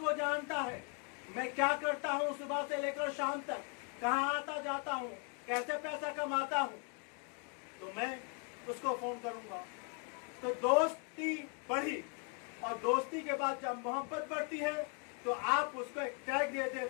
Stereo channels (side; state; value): right; quieter; 38.0 dB